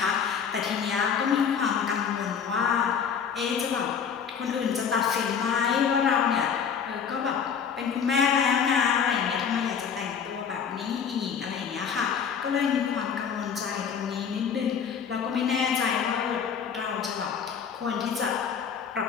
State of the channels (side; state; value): right; quieter; 7.0 dB